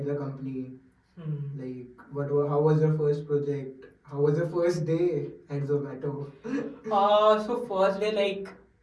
the company? Like how was your first project? How was your first day at Zomato? So first day like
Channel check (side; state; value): both; identical; correlation 1.00